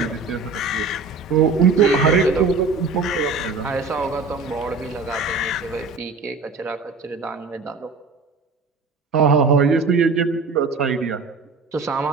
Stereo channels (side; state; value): left; quieter; 4.2 dB